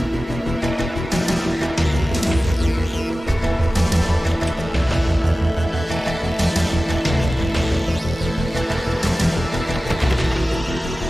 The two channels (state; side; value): normal; both; correlation 0.96